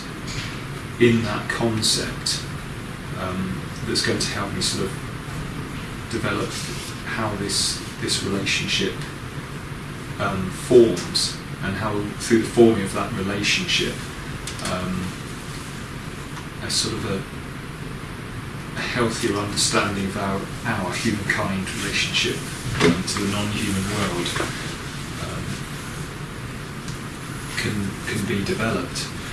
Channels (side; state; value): both; identical; correlation 1.00